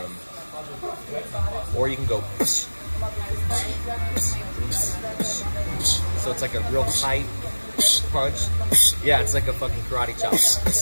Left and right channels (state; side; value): inverted; both; correlation -1.00